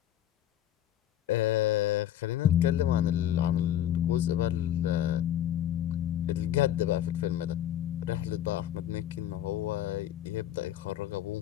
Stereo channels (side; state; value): right; quieter; 11.6 dB